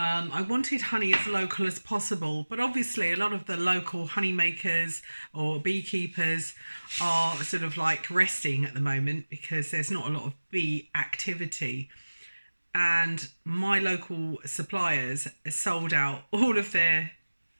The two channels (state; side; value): inverted; both; correlation -1.00